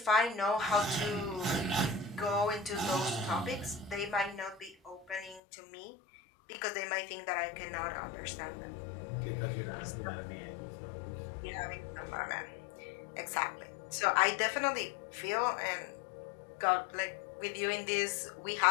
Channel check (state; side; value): drops out; right; at 5.4 s